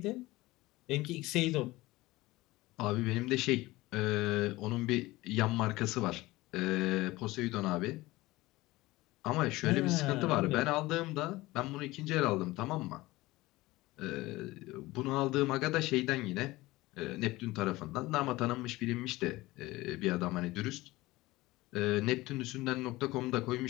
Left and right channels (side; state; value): right; quieter; 19.4 dB